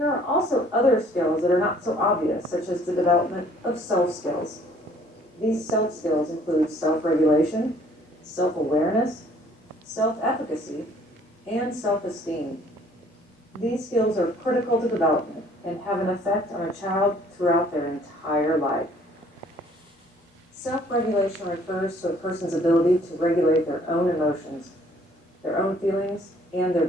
are also other skills that are not so obvious, such as the development of self skills. These self skills include self-regulation, self-awareness, self-efficacy, and self-esteem. These skills are critical to development and have an effect on a child throughout their entire life. Self-regulation refers to a person's ability to regulate their own emotions, their own feelings, and their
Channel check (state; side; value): normal; both; correlation 0.58